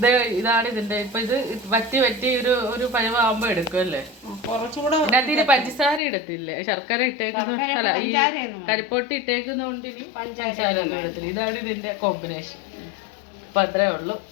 ഇതാണ് ഇതിന്റെ ഇപ്പൊ ഇത് വറ്റി ഒരു പഴമാകുമ്പോ എടുക്കും അല്ലേ? കുറച്ചുകൂടെ ഇതിനകത്ത് പഞ്ചസാര ഇടത്തില്ലേ? ശർക്കര ഇട്ടേക്കുന്ന അല്ല ഈ കരിപ്പൊട്ടി ഇട്ടേക്കുന്നോണ്ട് ഇനി പഞ്ചസാര ഒന്നും ഇടത്തില്ല. ഇതാണ് ഇതിന്റെ കോമ്പിനേഷൻ. അപ്പൊ അത്രേ ഉള്ളൂ.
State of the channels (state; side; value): drops out; right; at 6.0 s